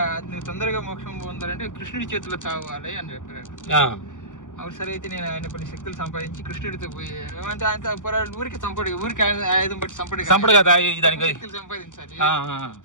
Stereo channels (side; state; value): right; late; 0.87 ms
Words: నువ్వు తొందరగా మోక్షం పొందాలంటే కృష్ణుడి చేతిలో చావాలి అని చెప్పాడు. అవును సరే అయితే నేను ఆయన కొన్ని శక్తులు సంపాదించి కృష్ణుడితో పోయి ఏమంటే ఆయన ఊరికి ఊరికి ఆయుధం బట్టి శక్తులు సంపాదించాలి.